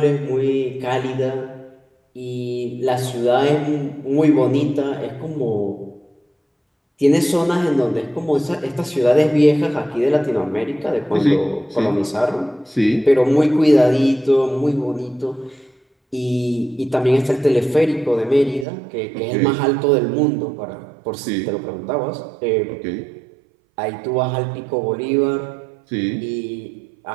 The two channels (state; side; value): drops out; left; at 18.7 s